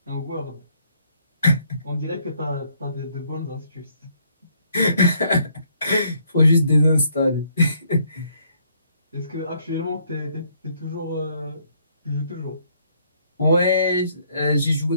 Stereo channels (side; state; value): both; inverted; correlation -0.68